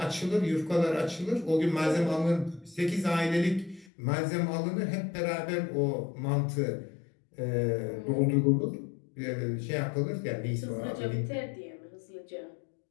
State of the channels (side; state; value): right; drops out; at 3.9 s